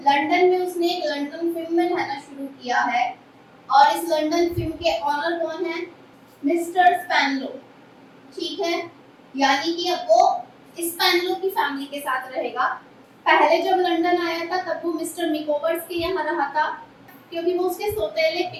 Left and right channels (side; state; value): both; identical; correlation 1.00